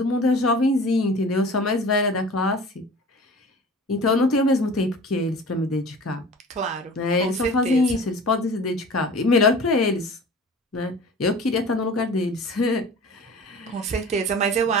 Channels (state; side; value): normal; both; correlation 0.41